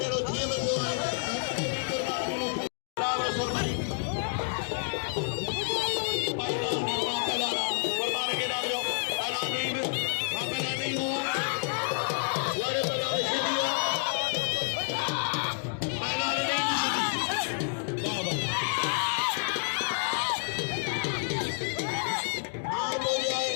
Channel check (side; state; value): right; silent; 58 dB below the other